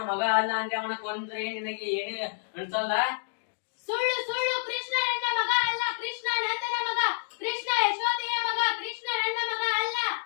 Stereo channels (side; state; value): right; silent; digital silence